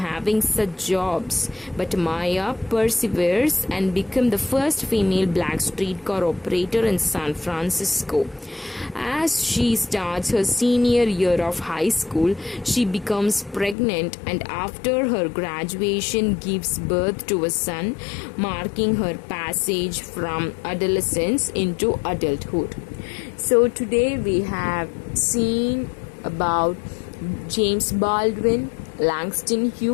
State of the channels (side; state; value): right; drops out; at 13.8 s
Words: such jobs, but Maya perseveres and becomes the first female black streetcar operator in San Francisco. As she starts her senior year of high school, she becomes pregnant and after her graduation gives birth to a son, marking her passage from adolescence into adulthood. So today we have seen about James Baldwin, Langston